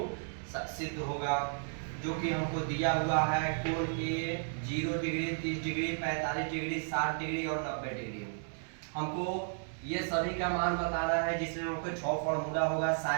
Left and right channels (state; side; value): silent; left; digital silence